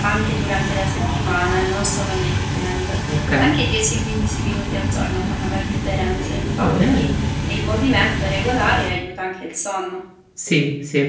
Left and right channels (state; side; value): identical; both; correlation 1.00